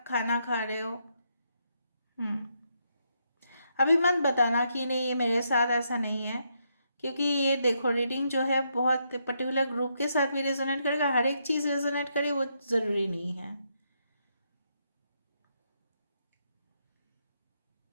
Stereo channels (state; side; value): inverted; both; correlation -0.78